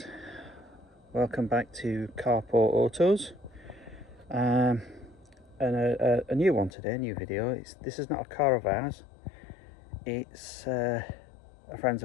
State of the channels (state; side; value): drops out; right; at 6.7 s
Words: welcome back to Carport Autos, and a new one today, a new video. This is not a car of ours, it's it's a friend's